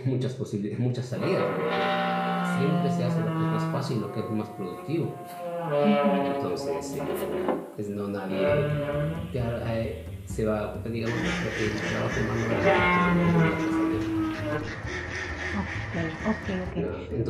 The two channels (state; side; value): identical; both; correlation 1.00